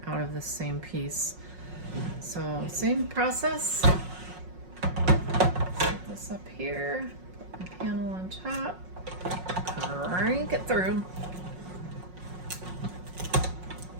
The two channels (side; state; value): left; late; 5.5 ms